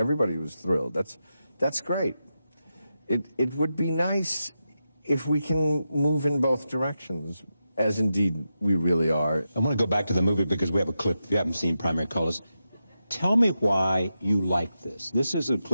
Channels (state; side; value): inverted; both; correlation -0.89